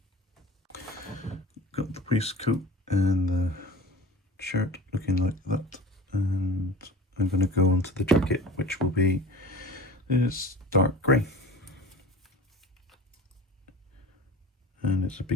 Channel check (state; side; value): normal; both; correlation 0.37